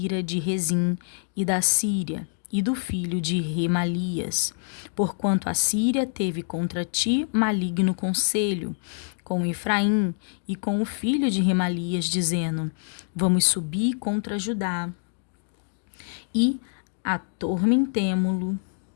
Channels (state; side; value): silent; right; digital silence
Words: de Rezim e da Síria, e do filho de Remalias, porquanto a Síria teve contra ti maligno conselho, com Efraim e com o filho de Remalias, dizendo: vamos subir contra Judá, e atormentemo-lo,